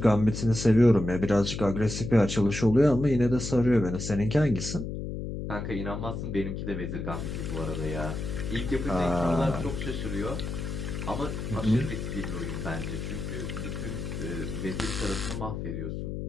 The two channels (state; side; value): noise; left; hum, 5 dB below the sound